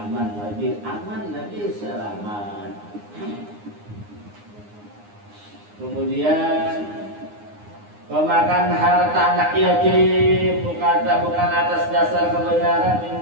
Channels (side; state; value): left; late; 9.7 ms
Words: lebih selamat. Kemudian pemakan harta anak yatim bukan atas dasar kebenaran min